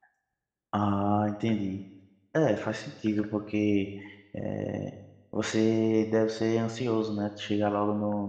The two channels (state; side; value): identical; both; correlation 1.00